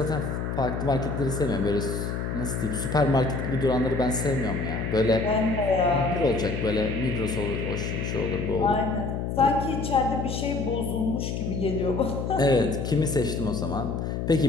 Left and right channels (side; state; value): left; noise; hum, 3 dB below the sound